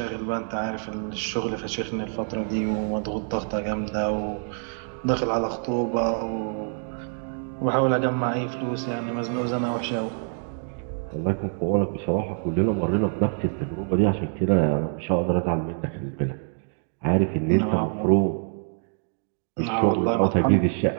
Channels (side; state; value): left; silent; 61 dB below the other